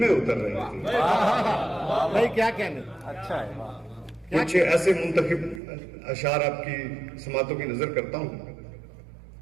اتر رہی تھی. بھائی کیا کہنے. اچھا ہے. کچھ ایسے منتخب اشعار آپ کی سماعتوں کی نظر کرتا ہوں.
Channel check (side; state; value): left; drops out; at 5.6 s